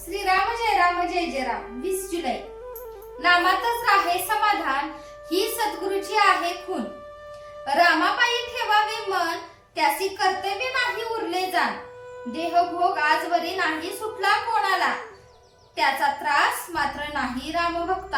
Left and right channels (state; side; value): identical; both; correlation 1.00